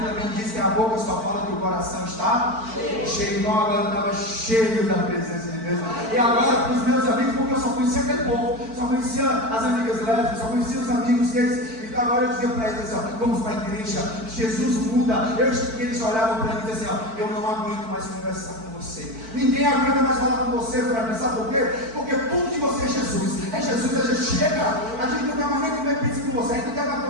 também diz que a boca só fala que o coração está cheio. Então agora eu estava cheio da presença de Deus, e agora para os meus amigos, porque eu só conhecia aquele povo, só conhecia as amigas lésbicas, só conhecia os amigos deles. Então agora eu dizia para eles assim, ó, vamos para a igreja, Jesus muda. Eles olhavam para mim e diziam assim, ó, eu não aguento mais conversar com você, ninguém aguenta mais falar com você, Fran. Sabe por quê? Porque tudo de você é Jesus, a gente chega, a gente não quer mais nem comer pizza com você, a gente não quer mais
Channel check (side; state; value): left; late; 4.5 ms